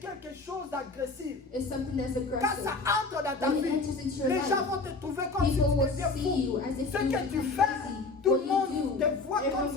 quelque chose d'agressif. is something that's Quand aggressive. ça entre dans ta When it vie, enters into your les life, gens vont te trouver comme si tu people will deviens see you fou. as if Ce you que tu become fais, crazy. tout le What you monde do, te voit everyone comme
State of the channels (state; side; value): quieter; right; 3.7 dB